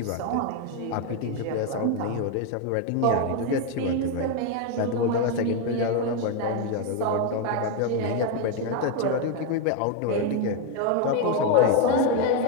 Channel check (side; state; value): both; different; correlation 0.02